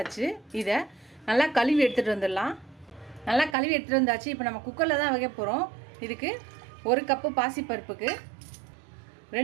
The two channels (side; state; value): left; drops out; at 3.6 s